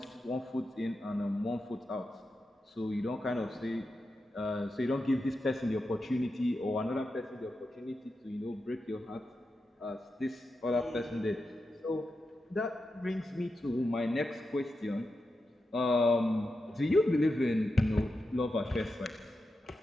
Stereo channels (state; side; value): normal; both; correlation 0.89